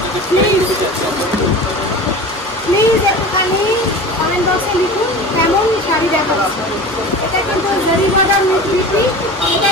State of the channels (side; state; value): both; normal; correlation 0.35